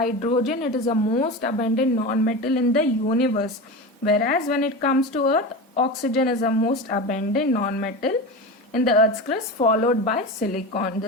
it is the most abundant non-metal in the universe, whereas when it comes to earth, oxygen is the most abundant non-metal in the earth's crust, followed by silicon.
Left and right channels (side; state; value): both; normal; correlation 0.25